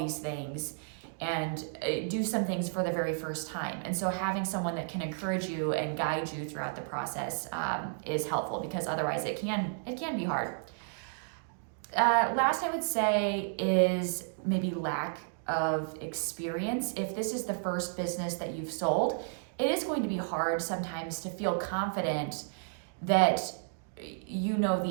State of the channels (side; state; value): left; silent; digital silence